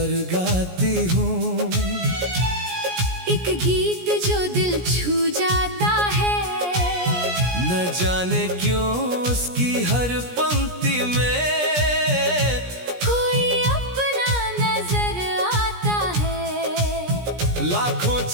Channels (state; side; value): late; left; 17 ms